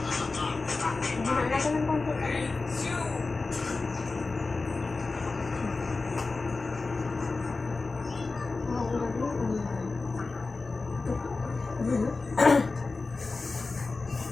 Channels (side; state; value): right; quieter; 3.8 dB